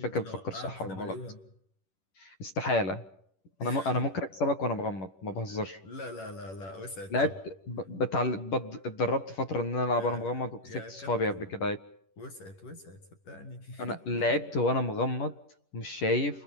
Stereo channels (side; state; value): right; late; 11 ms